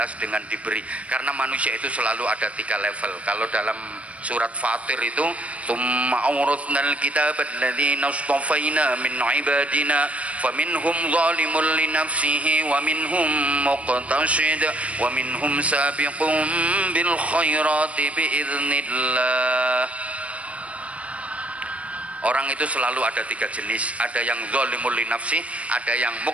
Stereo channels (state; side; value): late; left; 0.065 ms